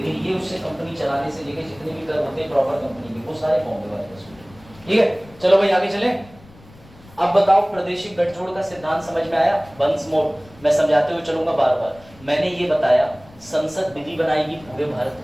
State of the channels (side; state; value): left; noise; rumble, 24 dB below the sound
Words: ये उससे कंपनी चलाने से लेकर जितने भी कर होते हैं प्रॉपर कंपनी के, वो सारे बॉम्बे वाले वसूल। ठीक है, चलो भाई आगे चले। अब बताओ प्रादेशिक गठजोड़ का सिद्धांत समझ में आया? वंस मोर मैं समझाते हुए चलूंगा बार बार। मैंने ये बताया संसद विधि बनाएगी पूरे भारत